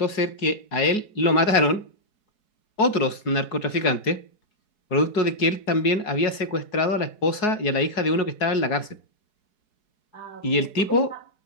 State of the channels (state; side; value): late; right; 4.7 ms